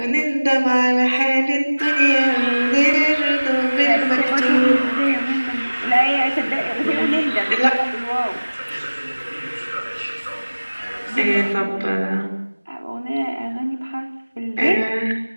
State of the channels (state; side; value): inverted; both; correlation -1.00